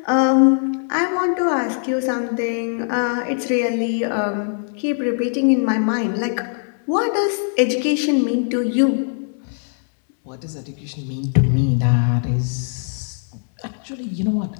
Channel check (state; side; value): silent; right; 61 dB below the other